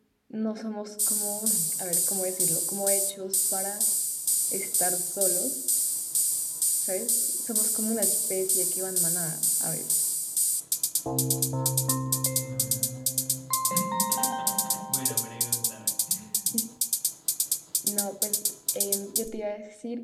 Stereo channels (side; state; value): both; identical; correlation 1.00